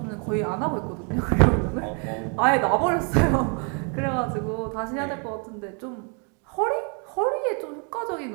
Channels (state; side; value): quieter; left; 38.3 dB